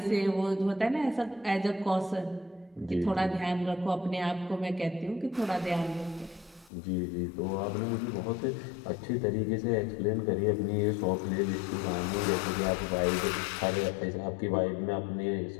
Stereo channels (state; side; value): drops out; right; at 6.7 s